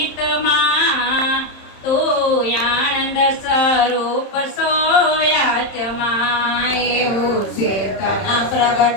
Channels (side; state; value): right; late; 31 ms